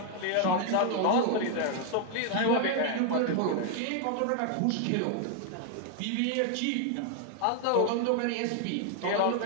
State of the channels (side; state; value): both; different; correlation 0.00